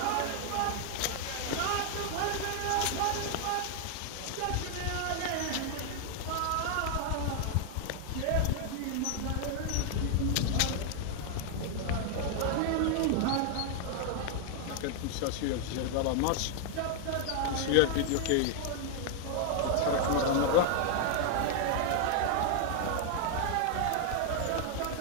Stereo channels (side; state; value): both; different; correlation 0.00